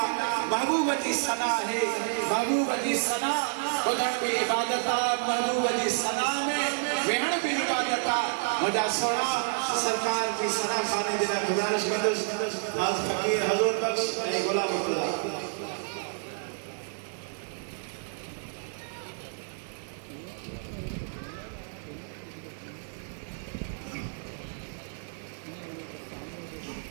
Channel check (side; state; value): left; silent; digital silence